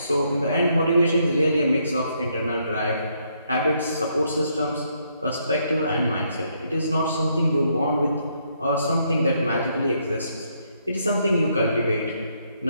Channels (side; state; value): both; inverted; correlation -0.73